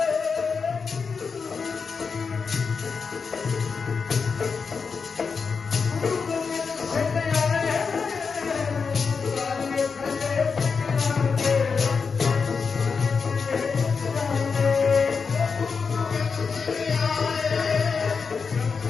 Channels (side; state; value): right; quieter; 5.3 dB